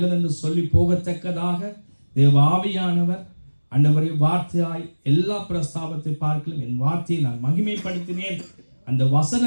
சொல்லி போகத்தக்கதாக தேவ ஆவியானவர் ஆண்டவரே வார்த்தையாய் எல்லா பிரஸ்தாபத்தை பார்க்கலும் என் வார்த்தையை நான் மகிமைப்படுத்தினேன் அந்த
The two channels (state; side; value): inverted; both; correlation -1.00